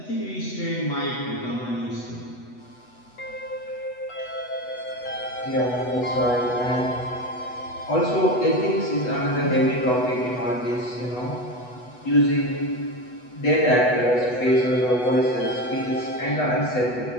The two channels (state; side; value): late; right; 8.1 ms